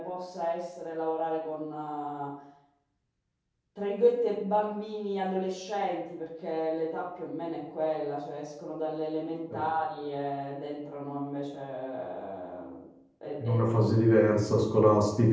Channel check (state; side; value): identical; both; correlation 1.00